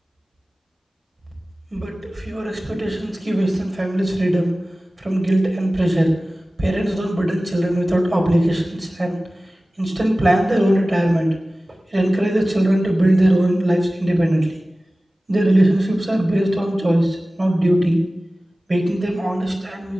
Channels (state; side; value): normal; both; correlation 0.97